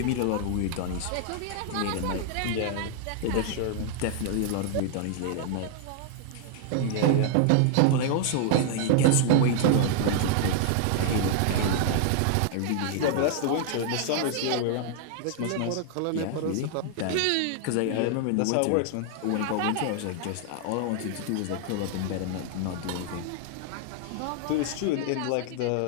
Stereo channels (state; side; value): different; both; correlation 0.00